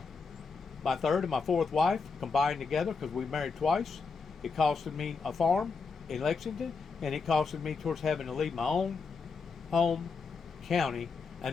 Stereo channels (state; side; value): quieter; right; 4.8 dB